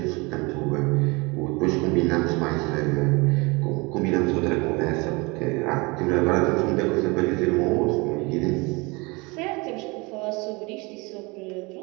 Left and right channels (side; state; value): left; quieter; 26.5 dB